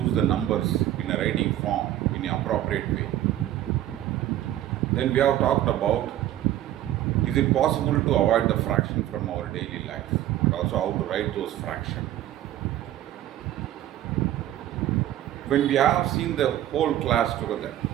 the numbers in a writing form in an appropriate way. Then we have talked about, is it possible to avoid the fraction from our daily life, and also how to write those fractions. When we have seen the whole class together,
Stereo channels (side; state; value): left; quieter; 13.0 dB